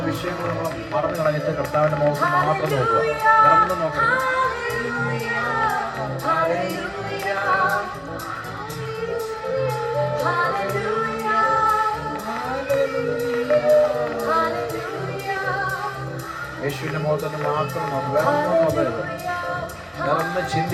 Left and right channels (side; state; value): both; identical; correlation 1.00